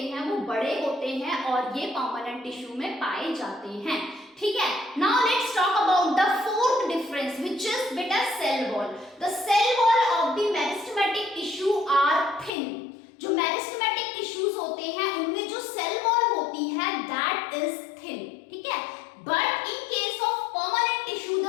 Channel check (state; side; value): drops out; right; at 12.5 s